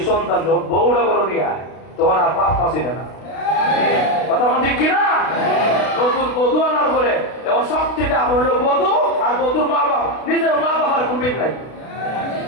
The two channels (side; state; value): right; late; 32 ms